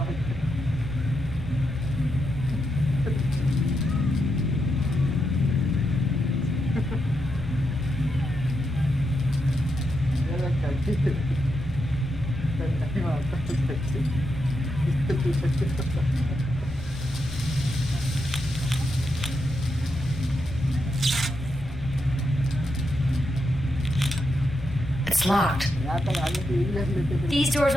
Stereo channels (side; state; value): left; noise; rumble, 13 dB below the sound